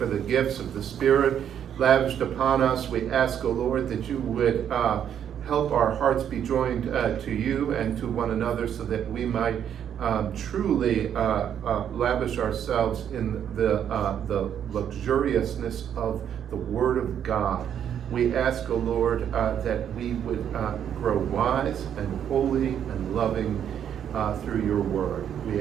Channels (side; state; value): left; quieter; 9.2 dB